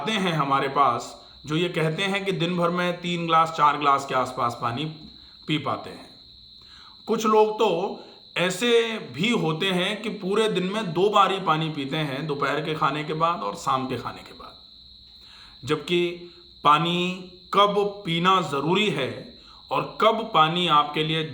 हैं हमारे पास जो ये कहते हैं कि दिन भर में 3 गिलास 4 गिलास के आसपास पानी पी पाते हैं। कुछ लोग तो ऐसे भी होते हैं कि पूरे दिन में 2 बार ही पानी पीते हैं, दोपहर के खाने के बाद और शाम के खाने के बाद। जबकि पानी कब पीना ज़रूरी है और कब पानी आपके लिए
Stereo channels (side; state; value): both; identical; correlation 1.00